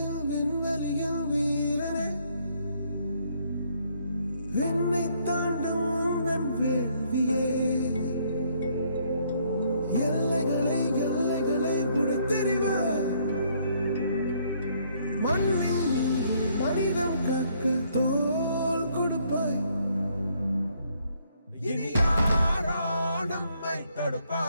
வீரனே, என்னை தாண்டும் என் வேள்வியே, எல்லைகளை புடைத்தெறிவாய், மண்ணில் மனிதம் கக்க தோல் கொடுப்பாய். இனி யாரோ நம்மை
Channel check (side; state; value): both; inverted; correlation -0.68